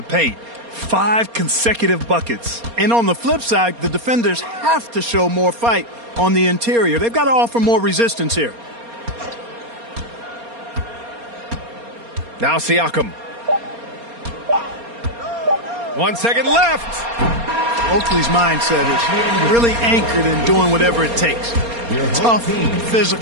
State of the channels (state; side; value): late; left; 4.3 ms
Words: paint. 5 consecutive buckets. And on the flip side, the defenders have to show more fight on the interior. They've got to offer more resistance here. Now Siakam. 1 second left. Oakley's mindset is really anchored in doing whatever it takes. Tough,